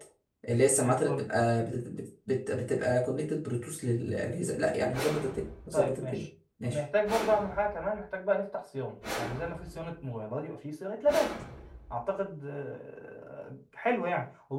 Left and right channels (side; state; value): both; identical; correlation 1.00